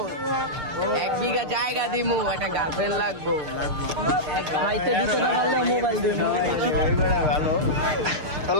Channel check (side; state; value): left; late; 6.6 ms